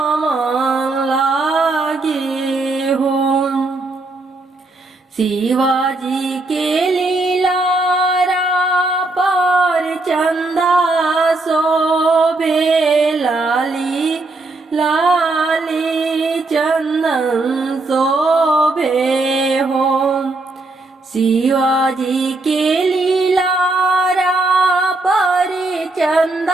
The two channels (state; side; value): quieter; left; 3.1 dB